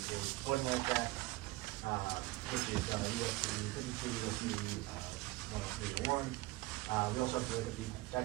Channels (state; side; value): quieter; left; 20.0 dB